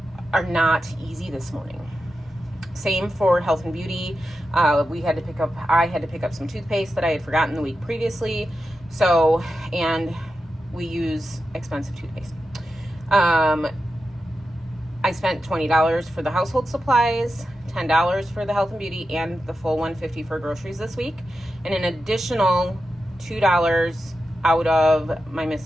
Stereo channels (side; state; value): both; normal; correlation 0.90